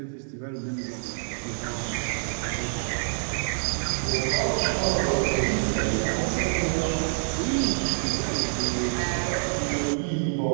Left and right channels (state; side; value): silent; left; digital silence